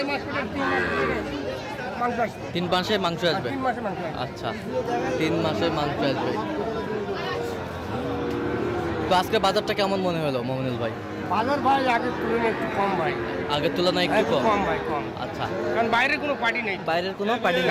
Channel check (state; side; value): identical; both; correlation 1.00